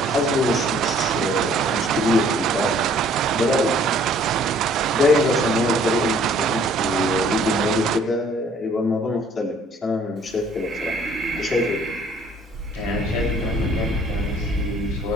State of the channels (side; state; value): both; normal; correlation 0.58